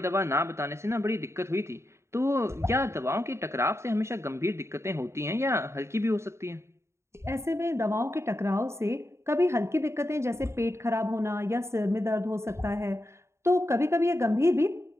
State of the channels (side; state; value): left; late; 0.13 ms